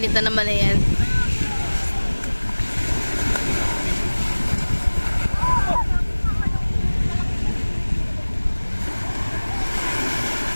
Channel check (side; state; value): both; inverted; correlation -1.00